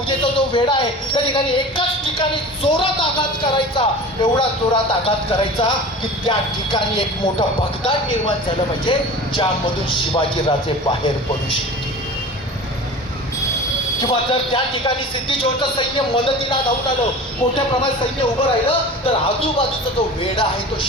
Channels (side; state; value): both; normal; correlation 0.37